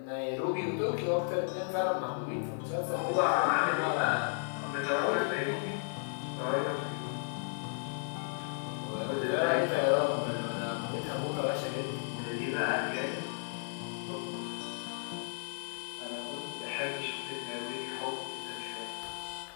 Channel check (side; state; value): right; silent; 55 dB below the other